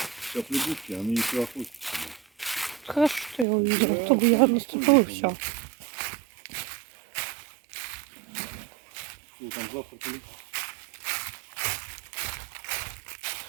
Сейчас лягушки, они не проходят. Хорошо, что я увидела. Да, То бы я наступила и конечно. все. Что там завтракали?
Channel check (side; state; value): left; drops out; at 3.5 s